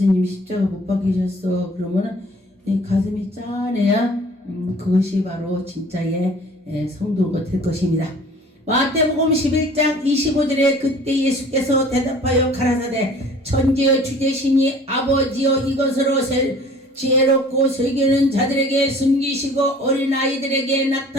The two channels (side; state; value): both; normal; correlation 0.49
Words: 십자가 못 박히셨어. 그러면은 가슴이 짠해야 그것이 바로 진짜의 성도가 될 것입니다. 마태복음 11장 25절에 그때 예수께서 대답하여 가라사대 천지의 주제시니 아버지여 이것으로 지혜롭고 설교는 자들에게 숨기시고 어린아이들에게